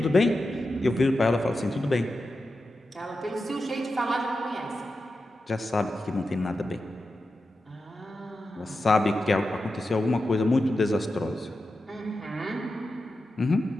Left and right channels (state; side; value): normal; both; correlation 0.90